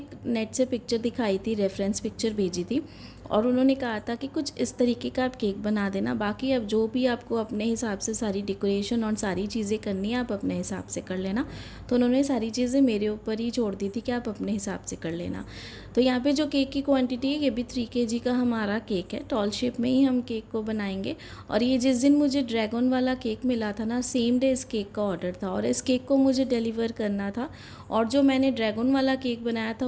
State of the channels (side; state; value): both; identical; correlation 1.00